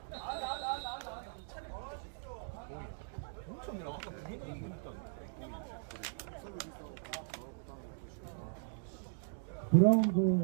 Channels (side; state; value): left; silent; digital silence